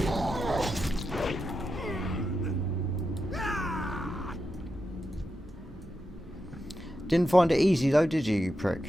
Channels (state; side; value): normal; both; correlation 0.88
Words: Didn't find it easy though, did you, you prick?